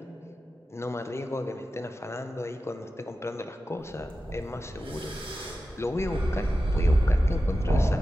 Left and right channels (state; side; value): normal; both; correlation 0.93